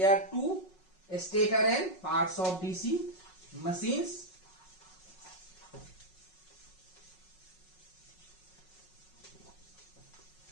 are two stator and parts of DC machines.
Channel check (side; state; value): right; late; 5.4 ms